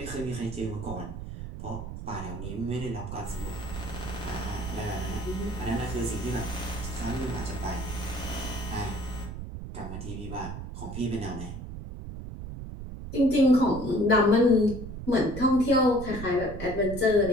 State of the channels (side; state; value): right; noise; rumble, 8 dB below the sound